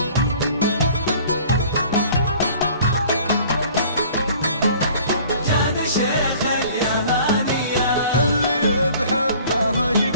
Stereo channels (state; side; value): inverted; both; correlation -0.50